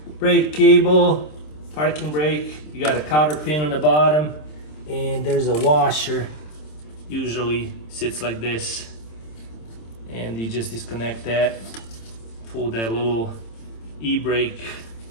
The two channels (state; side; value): late; right; 26 ms